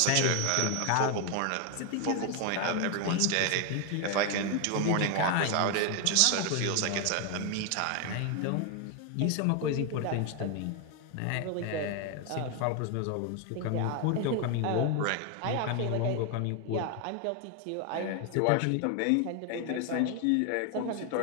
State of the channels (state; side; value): different; both; correlation 0.01